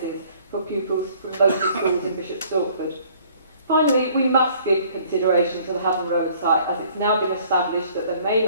for pupils from local schools in Bishop Stortford. Finally, we must give consideration to the Haven Road site, as it's now been established that there may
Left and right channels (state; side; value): inverted; both; correlation -0.57